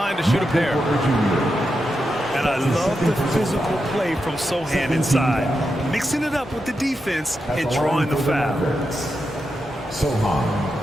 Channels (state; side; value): normal; both; correlation 0.87